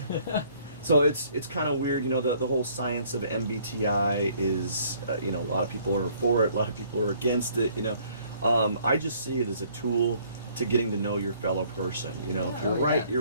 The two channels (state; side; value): inverted; both; correlation -0.61